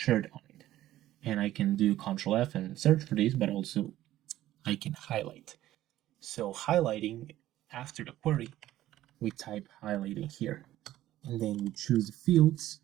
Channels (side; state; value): left; quieter; 14.1 dB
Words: on it. And I can do Control F and search for this, but also I can highlight. So highlighting, after the query, we type highlighting here. And then we choose the fields,